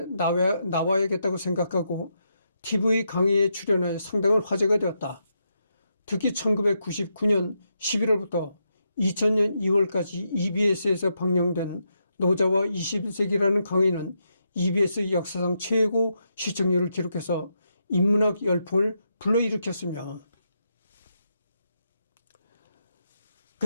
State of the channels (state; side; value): inverted; both; correlation -0.82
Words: 나와야겠다고 생각하고 TV 강의에 출연해 상당한 화제가 되었다. 특히 1999년 11월부터 2000년 2월까지 EBS에서 방영된 노자와 21세기라는 강의는 EBS 역사상 최고 시청률을 기록해서 인문학 열풍을 불러일으켰으며,